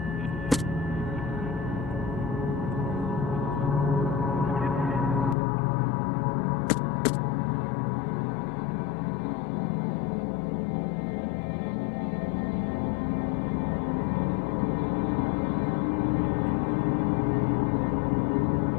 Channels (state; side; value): drops out; right; at 5.4 s